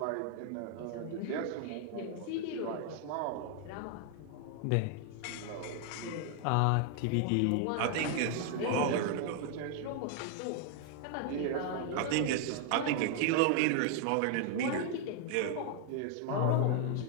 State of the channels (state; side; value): different; both; correlation 0.00